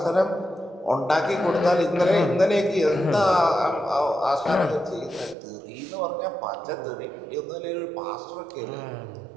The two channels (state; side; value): drops out; left; at 5.4 s